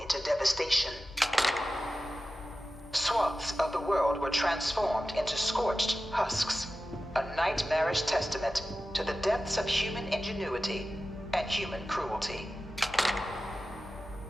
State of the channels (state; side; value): normal; both; correlation 0.94